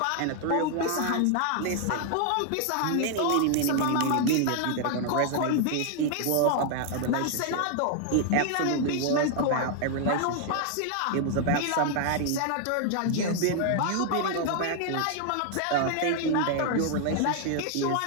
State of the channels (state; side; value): different; both; correlation 0.00